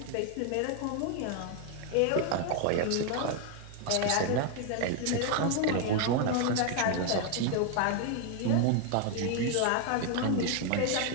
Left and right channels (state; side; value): different; both; correlation 0.01